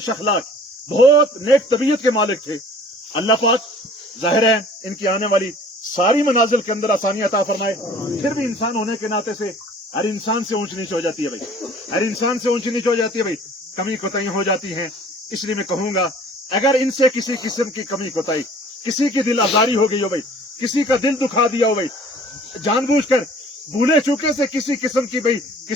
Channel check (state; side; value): normal; both; correlation 0.51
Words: अखलाक, बहुत नेक तबीयत के मालिक थे। अल्लाह पाक जाहिर है इनकी आने वाली सारी मनाजिल के अंदर आसानी अता फरमाए। फिर भी इंसान होने के नाते से हर इंसान से ऊंच नीच हो जाती है भाई, हर इंसान से ऊंच नीच हो जाती है भाई, कमी कोताही हो जाती है। इसलिए मैं कहूंगा, अगर इनसे किसी किस्म की कमी कोताही, किसी की दिल आजारी हो गई हो भाई, किसी का दिल दुखा दिया हो भाई, जानबूझकर भूले चूके से किसी किस्म की भाई